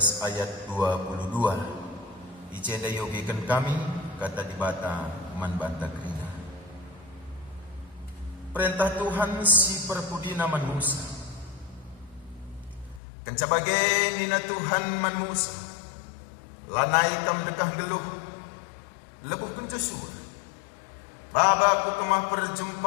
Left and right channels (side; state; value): right; drops out; at 13.0 s